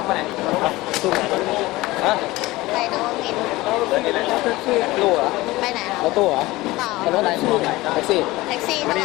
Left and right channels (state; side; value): quieter; right; 19.4 dB